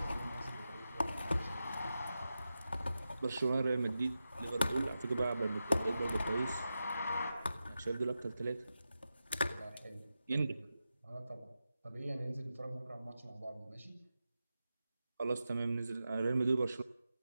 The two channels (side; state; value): both; inverted; correlation -0.91